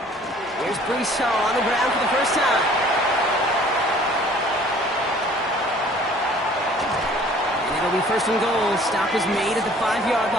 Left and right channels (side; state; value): both; normal; correlation 0.53